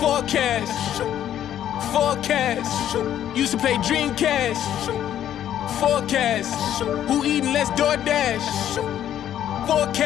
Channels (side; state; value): right; quieter; 10.9 dB